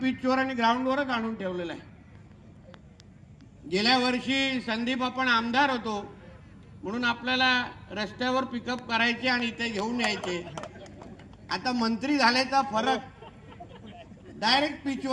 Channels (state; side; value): identical; both; correlation 1.00